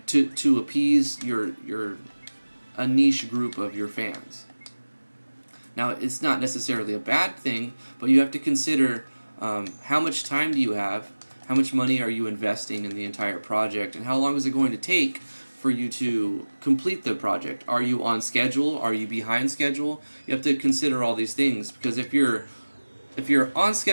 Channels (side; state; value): both; inverted; correlation -1.00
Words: To appease a niche group of your fans. Now, it's not necessarily a bad thing, but you have to consider how much time do you have, how much money are you investing in the entire project, and how long is it going to take for you to complete the project? Are you on schedule? Are you behind schedule? You have to consider all these things, because if you're on